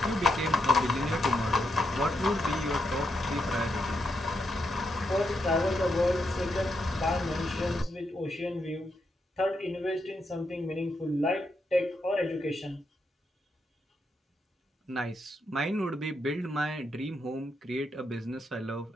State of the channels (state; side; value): normal; both; correlation 0.81